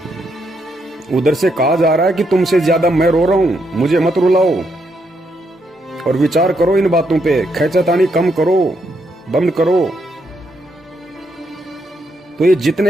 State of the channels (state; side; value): normal; both; correlation 0.78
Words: उधर से कहा जा रहा है कि तुमसे ज्यादा मैं रो रहा हूं, मुझे मत रुलाओ। और विचार करो इन बातों पे, खैचतानी कम करो, बंद करो। तो ये